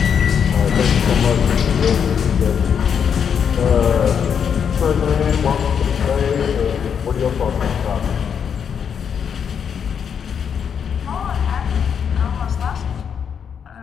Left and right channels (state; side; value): quieter; right; 7.4 dB